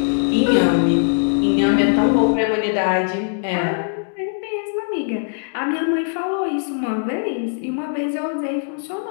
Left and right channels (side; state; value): right; silent; digital silence